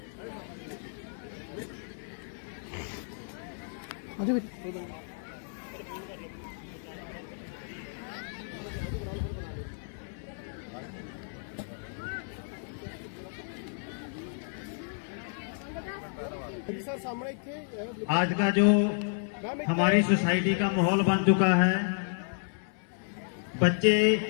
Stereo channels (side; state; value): right; silent; 57 dB below the other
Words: आज का जो हमारी सोसाइटी का माहौल बन चुका है, बच्चे